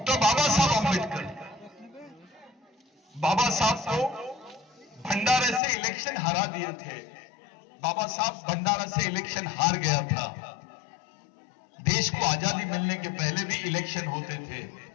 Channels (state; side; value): drops out; right; at 5.6 s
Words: बाबा साहब अम्बेडकर, बाबा साहब को भंडारे से इलेक्शन हरा दिए थे। बाबा साहब भंडारा से इलेक्शन हार गया था। देश को आजादी मिलने के पहले भी इलेक्शन होते थे,